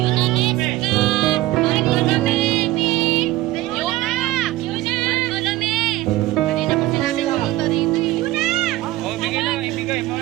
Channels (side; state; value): left; quieter; 16.8 dB